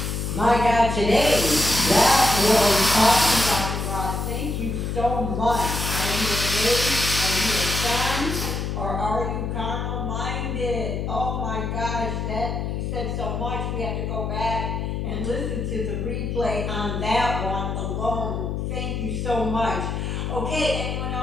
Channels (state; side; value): noise; left; hum, 2 dB below the sound